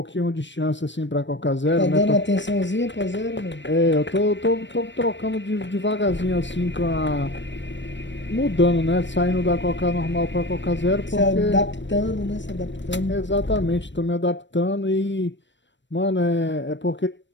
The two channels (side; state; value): right; late; 0.53 ms